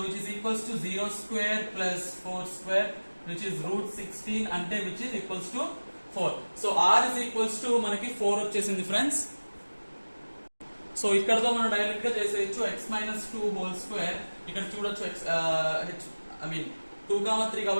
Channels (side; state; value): both; inverted; correlation -1.00